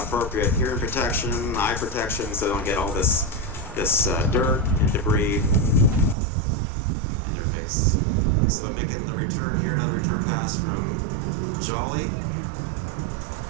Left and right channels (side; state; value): left; drops out; at 6.2 s